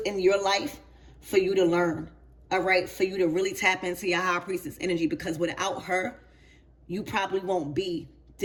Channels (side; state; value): both; identical; correlation 1.00